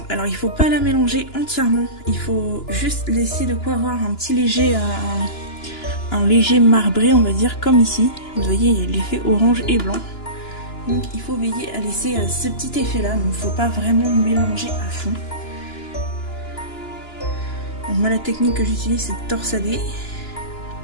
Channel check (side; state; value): right; late; 2.9 ms